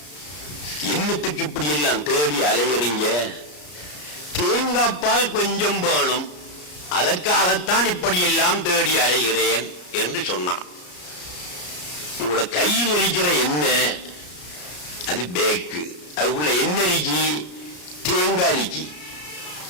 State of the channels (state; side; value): late; right; 33 ms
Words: என்னத்துக்கு இப்படி எல்லாம் தேடி அலையறீங்க? தேங்காய் பால் கொஞ்சம் வேணும், அதற்காகத்தான் இப்படி எல்லாம் தேடி அலைகிறேன் என்று சொன்னான். உங்களோட கையில் இருக்கிற எண்ணெய் அது பேக்கு, அதுக்குள்ள என்ன இருக்கி? தேங்காய் இருக்கி.